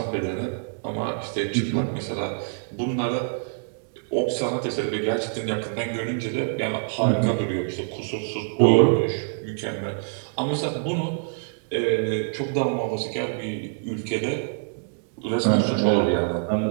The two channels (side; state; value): left; silent; digital silence